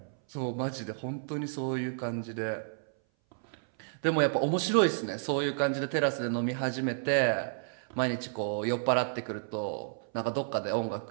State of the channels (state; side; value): silent; left; 57 dB below the other